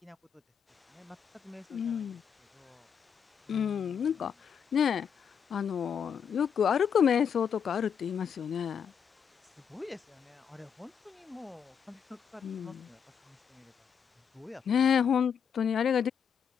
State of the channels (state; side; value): quieter; right; 7.4 dB